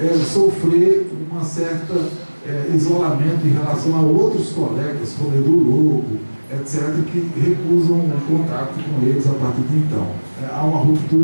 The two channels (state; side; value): inverted; both; correlation -1.00